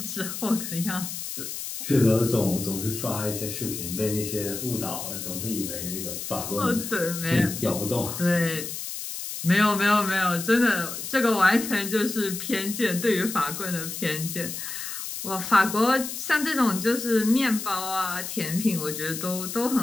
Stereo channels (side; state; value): left; noise; hiss, 7 dB below the sound